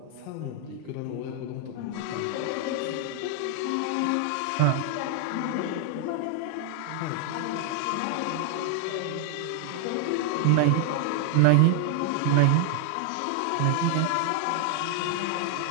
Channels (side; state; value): both; different; correlation 0.00